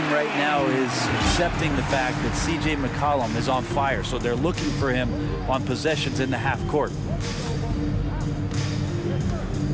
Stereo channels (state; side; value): identical; both; correlation 1.00